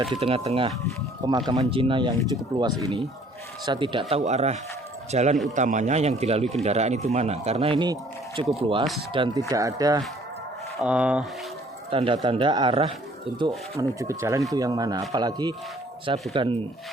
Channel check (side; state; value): both; normal; correlation 0.57